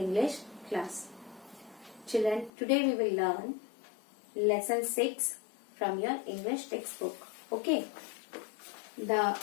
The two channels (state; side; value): drops out; right; at 2.5 s